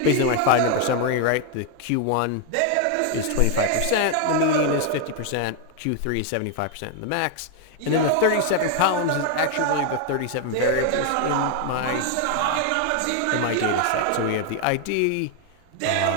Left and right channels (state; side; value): different; both; correlation 0.00